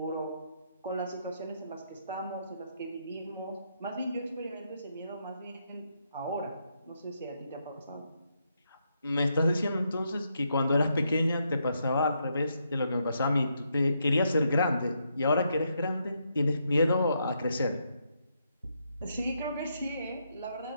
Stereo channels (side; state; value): both; inverted; correlation -0.78